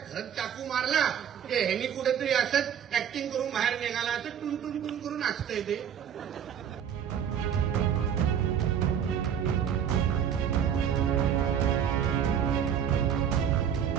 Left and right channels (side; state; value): left; quieter; 8.7 dB